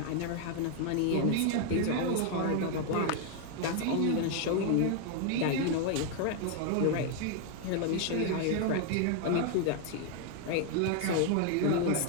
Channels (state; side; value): different; both; correlation 0.00